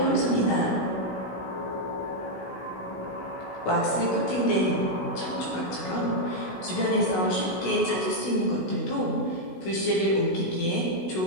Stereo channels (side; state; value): right; late; 16 ms